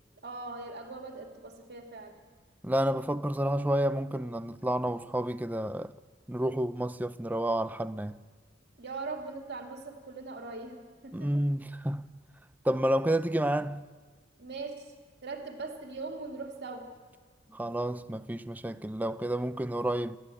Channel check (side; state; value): both; normal; correlation 0.84